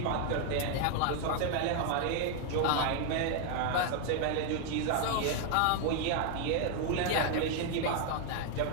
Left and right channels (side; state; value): both; different; correlation 0.00